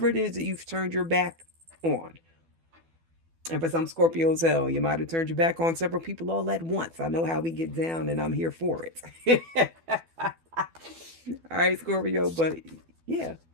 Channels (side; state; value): left; late; 12 ms